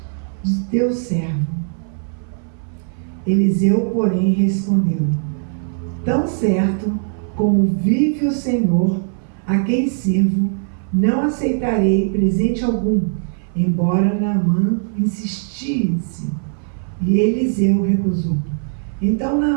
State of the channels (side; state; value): left; silent; 61 dB below the other